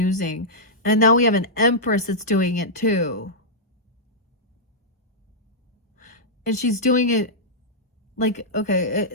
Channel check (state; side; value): normal; both; correlation -0.11